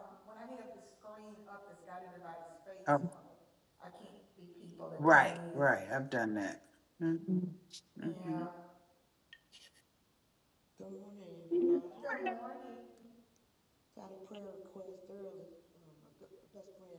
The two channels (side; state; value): both; identical; correlation 1.00